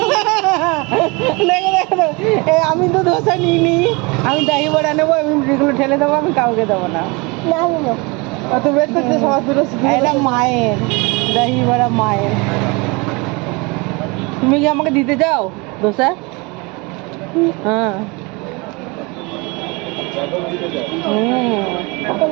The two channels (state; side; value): quieter; left; 27.3 dB